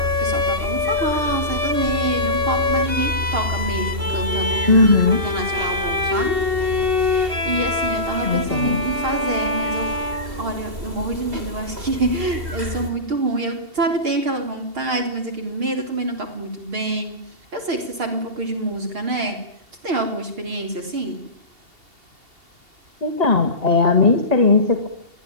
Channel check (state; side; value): late; left; 2.8 ms